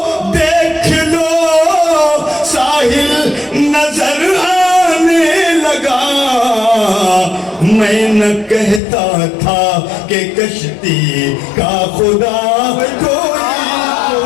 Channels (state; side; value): drops out; right; at 8.8 s